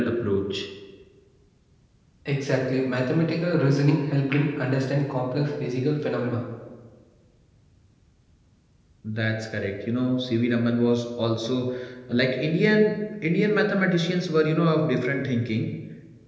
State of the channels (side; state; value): both; identical; correlation 1.00